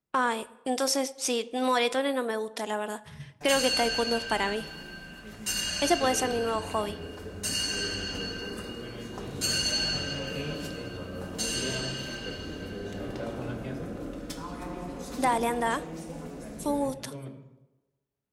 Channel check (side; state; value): both; identical; correlation 1.00